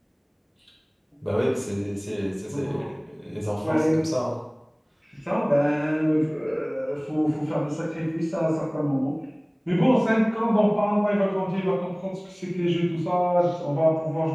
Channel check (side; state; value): both; identical; correlation 1.00